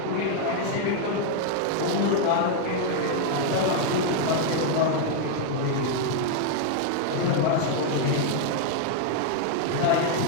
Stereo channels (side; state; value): both; different; correlation 0.00